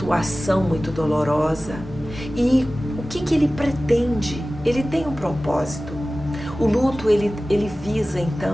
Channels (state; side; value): normal; both; correlation 0.96